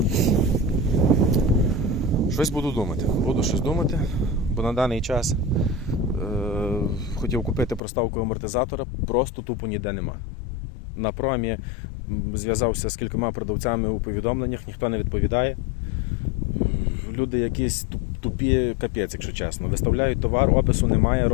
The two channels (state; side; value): drops out; right; at 7.8 s